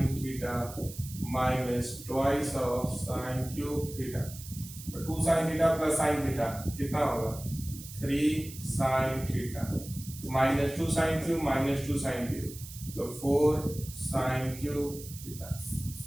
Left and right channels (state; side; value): noise; right; hiss, 14 dB below the sound